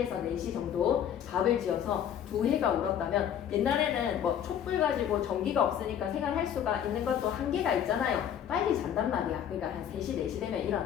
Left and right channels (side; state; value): right; quieter; 9.4 dB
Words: 4시 정도 밥을 지어서 두 해가 울었다면 옛날에는 뭐 촛불 가지고 전기가 없으니까 생활할 수가 있는 것도 한계가 있잖아요. 빨리 잔단 말이야. 그러니까 한 3시, 4시 되면